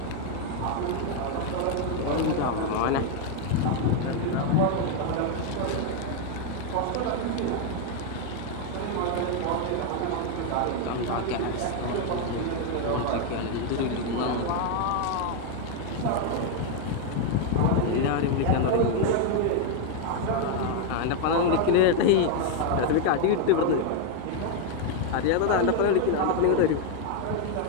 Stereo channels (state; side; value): different; both; correlation 0.01